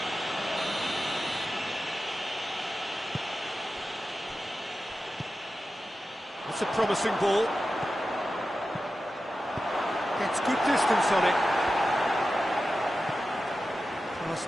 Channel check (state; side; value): normal; both; correlation 0.93